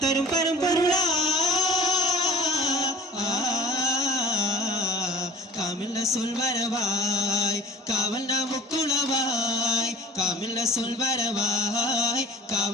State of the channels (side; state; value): both; normal; correlation 0.41